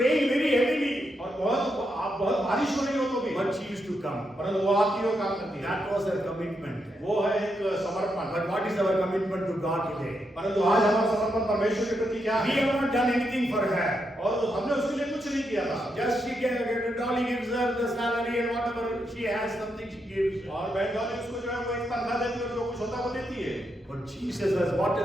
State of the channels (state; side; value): normal; both; correlation 0.82